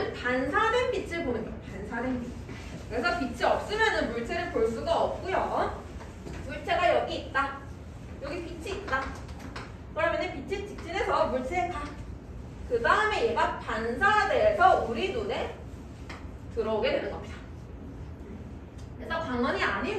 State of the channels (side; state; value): both; identical; correlation 1.00